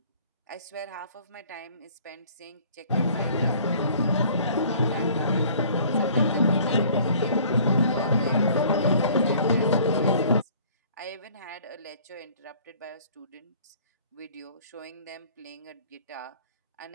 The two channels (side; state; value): both; inverted; correlation -0.53